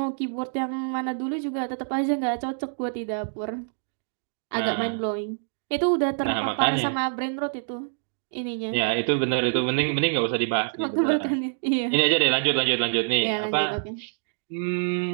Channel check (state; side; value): silent; left; digital silence